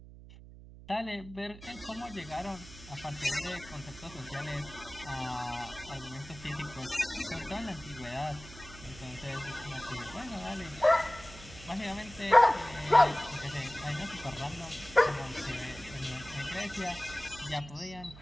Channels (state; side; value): noise; right; hum, 17 dB below the sound